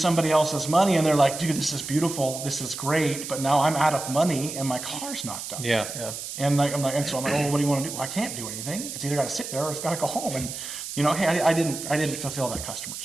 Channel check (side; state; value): right; noise; hiss, 8 dB below the sound